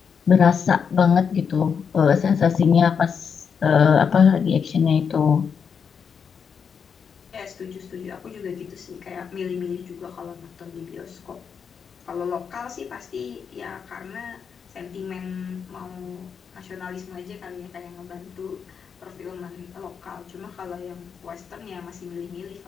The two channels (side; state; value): right; quieter; 6.6 dB